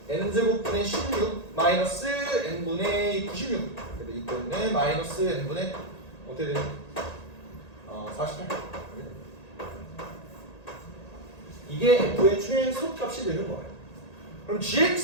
n제곱분의 16 마이너스 n분의 96 그래서 이 때문에 마이너스 n분의 어떻게 되니? 48 이게 f의 최소값이 되는 거예요. 그럼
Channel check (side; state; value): right; late; 1.8 ms